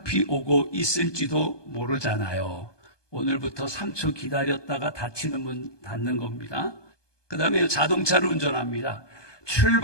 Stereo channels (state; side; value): late; right; 1.2 ms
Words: 오고 있을지도 모르잖아요. 오늘부터 3초 기다렸다가 닫히는 문 닫는 겁니다. 그 다음에 자동차를 운전합니다.